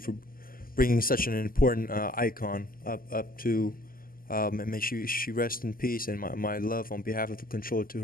bringing such an important icon up to, and may she rest in peace. And my love on behalf of the Controller to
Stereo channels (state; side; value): late; right; 0.42 ms